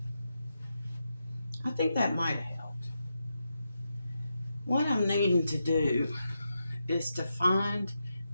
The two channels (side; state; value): both; inverted; correlation -0.86